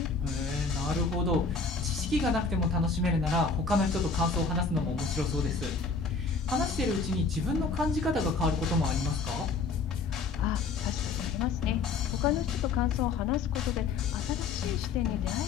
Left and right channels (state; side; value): quieter; right; 4.5 dB